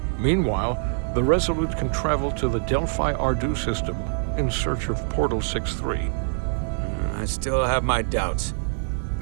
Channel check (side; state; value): left; silent; digital silence